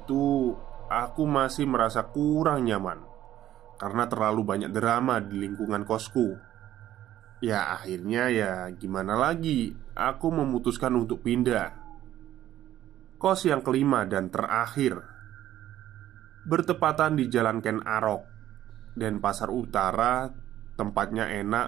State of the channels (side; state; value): left; quieter; 12.7 dB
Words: aku masih merasa kurang nyaman karena terlalu banyak drama di lingkungan kosku. Ya akhirnya ya gimana lagi, aku memutuskan untuk pindah. Kos yang kelima dan terakhir bertepatan di Jalan Ken Arok dan Pasar Utara. Tempatnya